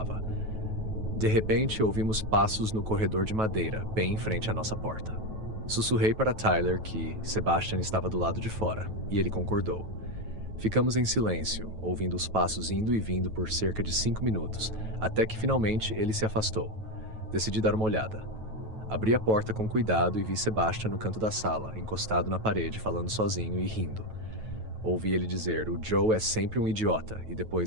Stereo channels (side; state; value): left; late; 9.2 ms